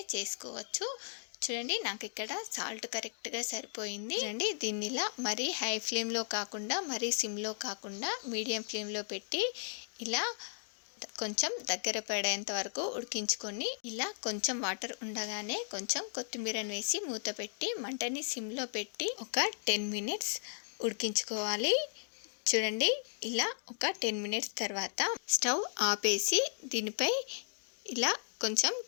చేసుకోవచ్చు. చూడండి, నాకు ఇక్కడ సాల్ట్ కరెక్ట్గా సరిపోయింది. చూడండి, దీన్ని ఇలా మరీ హై ఫ్లేమ్లో కాకుండా మరీ సిమ్లో కాకుండా మీడియం ఫ్లేమ్లో పెట్టి ఇలా కొంచెం దగ్గర పడేంత వరకు ఉడికించుకొని ఇలా కొంచెం వాటర్ ఉండగానే కొంచెం కొత్తిమీరని వేసి మూత పెట్టి మంటని సిమ్లో పెట్టి ఒక 10 మినిట్స్ ఉడికించుకోవాలి. చూడండి, ఇలా ఒక 10 మినిట్స్ తర్వాత స్టవ్ ఆపేసి దీనిపై ఇలా కొంచెం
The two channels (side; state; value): right; silent; digital silence